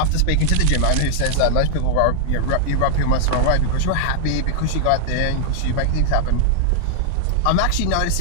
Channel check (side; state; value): both; different; correlation -0.01